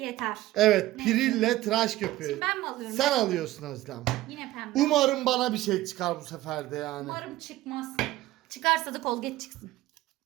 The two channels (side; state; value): left; quieter; 16.3 dB